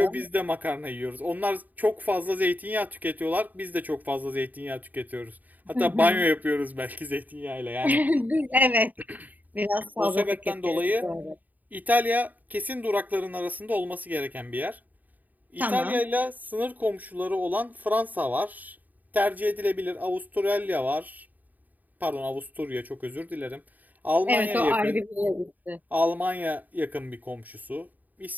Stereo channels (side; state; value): left; late; 0.082 ms